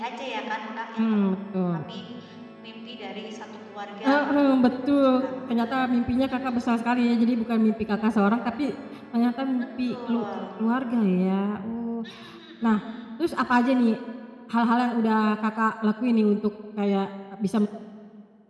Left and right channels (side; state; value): both; identical; correlation 1.00